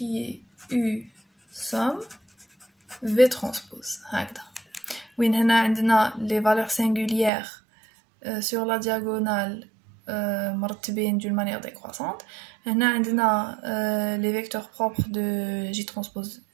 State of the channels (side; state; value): left; drops out; at 7.3 s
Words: somme V transpose. Oui, on a les valeurs singulières sur la diagonale d'une manière décroissante. On a les vecteurs propres de J transpose